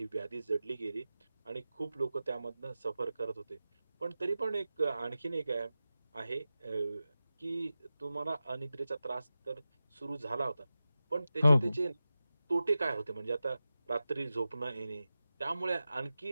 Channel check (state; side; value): inverted; both; correlation -0.94